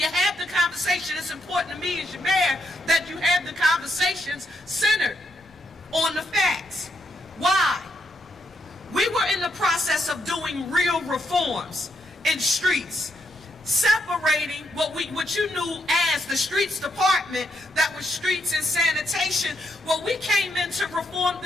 have the conversation, it's important to me as your mayor that you have the conversations centered on the facts. Why? We were in the process of doing real reforms in streets, separating what you knew as the streets department, that was streets and sanitation. Well, we came in to reform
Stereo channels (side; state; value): both; normal; correlation 0.78